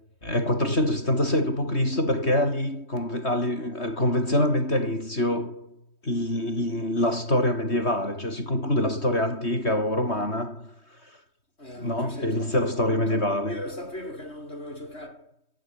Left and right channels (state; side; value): late; right; 3.2 ms